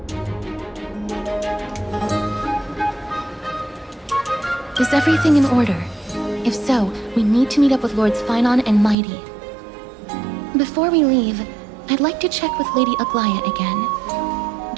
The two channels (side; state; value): left; drops out; at 9.0 s